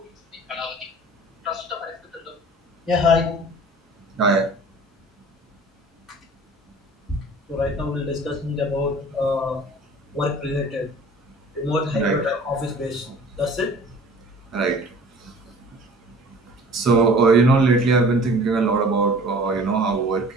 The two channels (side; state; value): both; normal; correlation 0.46